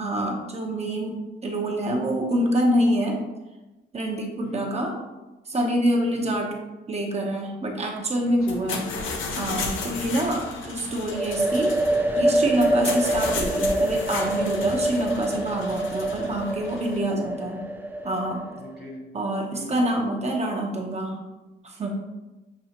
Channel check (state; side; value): normal; both; correlation 0.69